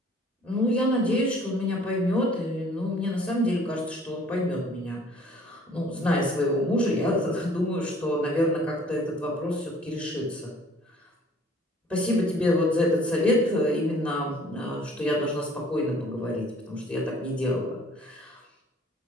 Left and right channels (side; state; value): both; normal; correlation 0.55